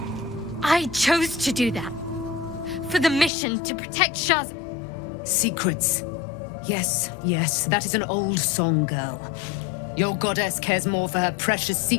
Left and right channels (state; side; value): drops out; right; at 3.3 s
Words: I chose to do that. For the mission to protect Shaz. Secrets. Yes, yes, that is an old song, girl. Your goddess cares more for her precious